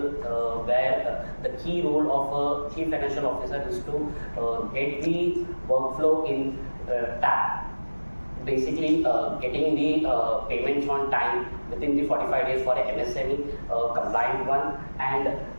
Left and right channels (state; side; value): inverted; both; correlation -1.00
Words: where the key role of a chief financial officer is to get the workflow in tap. Basically, getting the payments on time within the 45 days for a MSME compliant one, and